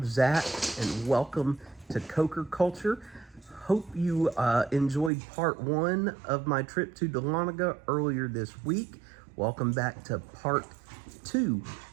Zach, and welcome to Coker Culture. Hope you enjoyed part one of my trip to Dahlonega earlier this week. Welcome back to part two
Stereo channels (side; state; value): left; drops out; at 5.1 s